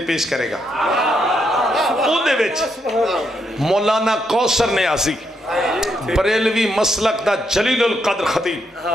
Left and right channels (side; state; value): both; normal; correlation 0.78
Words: پیش کرے گا او دے وچ مولانا کوثر نیازی بریلوی مسلک دا جلیل القدر خطیب